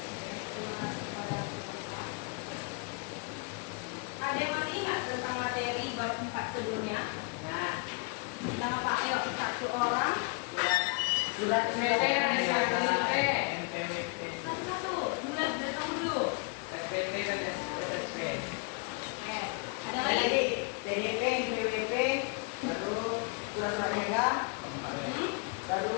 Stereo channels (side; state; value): right; quieter; 34.0 dB